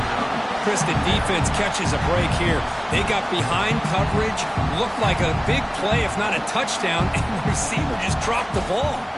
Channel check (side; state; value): both; identical; correlation 1.00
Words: Chris, the defense catches a break here. They got behind coverage. Looked like a big play, if not a touchdown, and the receiver just dropped the ball.